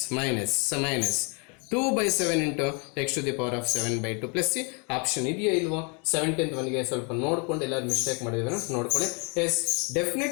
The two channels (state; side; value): quieter; right; 34.1 dB